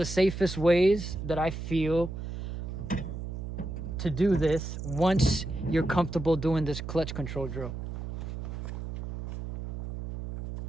safest ways that I feel to do this once you're comfortable doing this clutch control drill.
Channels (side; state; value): right; noise; hum, 6 dB below the sound